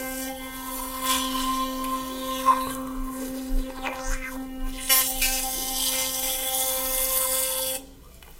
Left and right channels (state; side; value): identical; both; correlation 1.00